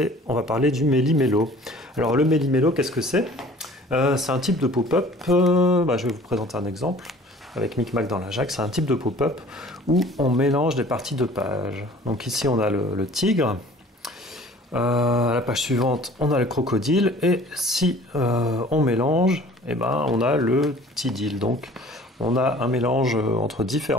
on va parler du méli-mélo. Alors le méli-mélo, qu'est-ce que c'est? C'est un type de pop-up, je vais vous présenter un exemple avec Micmac dans la Jacque. C'est un type de pop-up où on mélange des parties de pages. Donc ici on a le tigre, à la page suivante on a le crocodile et si on mélange, on a le tidil. Donc on a un mélange entre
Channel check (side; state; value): both; normal; correlation 0.49